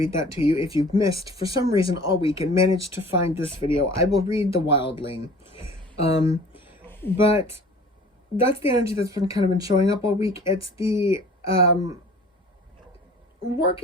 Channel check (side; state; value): both; normal; correlation 0.46